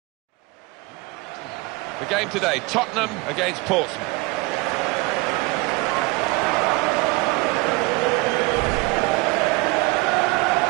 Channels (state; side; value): quieter; left; 24.3 dB